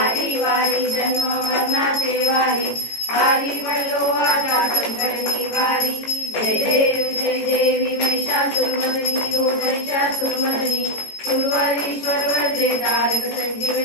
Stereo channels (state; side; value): late; right; 18 ms